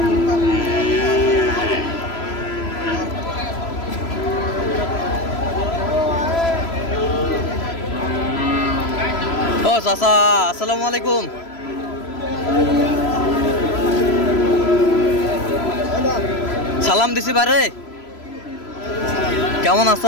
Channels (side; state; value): right; late; 3.0 ms